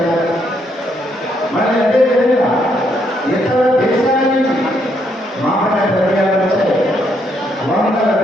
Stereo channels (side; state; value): both; normal; correlation 0.74